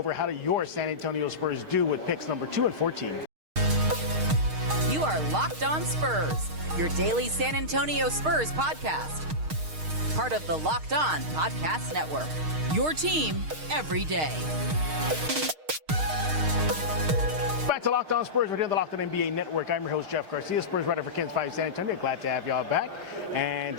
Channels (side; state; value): left; late; 6.5 ms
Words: How do your San Antonio Spurs do with picks number 2 and 14? You are Locked On Spurs, your daily San Antonio Spurs podcast. Part of the Locked On Podcast Network, your team every day. Back to Locked On Spurs. We're here on the Locked On NBA Network. I'm your host, Jeff Garcia, Spurs writer for KENS 5 San Antonio. Glad to have y'all back. And